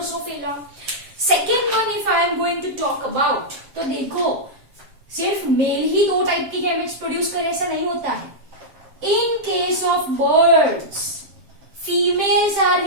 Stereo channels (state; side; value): late; left; 7.3 ms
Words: Second one, if I am going to talk about, तो देखो सिर्फ mail ही दो type की gametes produce करे ऐसा नहीं होता है. In case of birds, females are